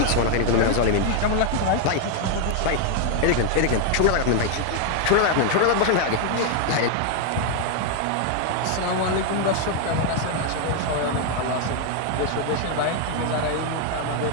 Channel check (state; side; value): different; both; correlation 0.00